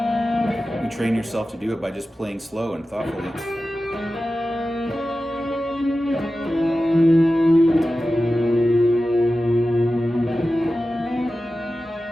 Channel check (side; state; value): both; normal; correlation 0.94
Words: You train yourself to do it by just playing slow and thoughtfully.